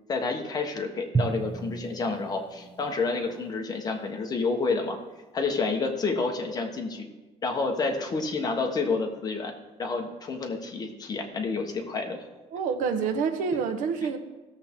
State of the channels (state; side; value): normal; both; correlation 0.52